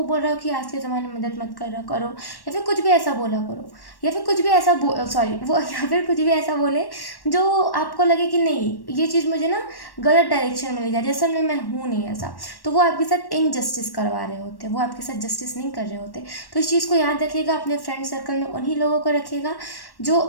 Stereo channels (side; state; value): right; late; 1.1 ms